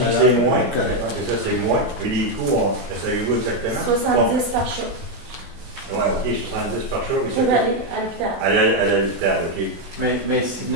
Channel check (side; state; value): left; late; 16 ms